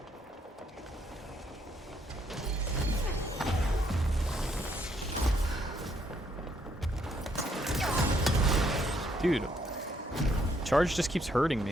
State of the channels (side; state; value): both; normal; correlation 0.71